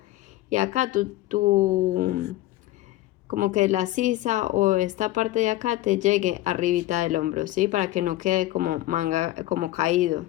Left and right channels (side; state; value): right; quieter; 16.0 dB